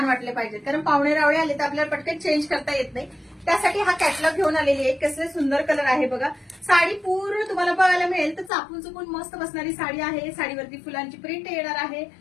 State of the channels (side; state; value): right; drops out; at 8.5 s